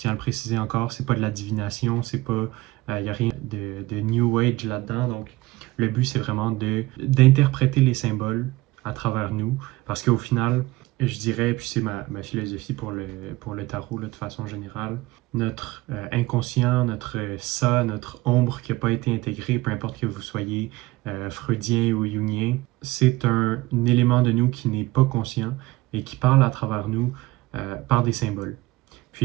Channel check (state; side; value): quieter; left; 19.4 dB